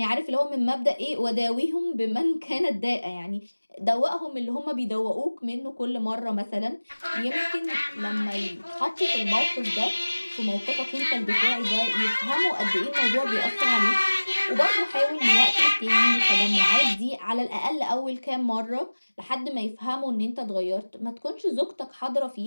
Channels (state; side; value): inverted; both; correlation -1.00